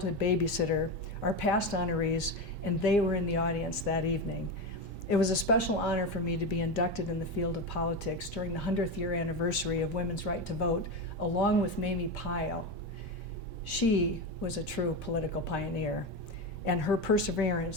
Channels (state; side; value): normal; both; correlation 0.17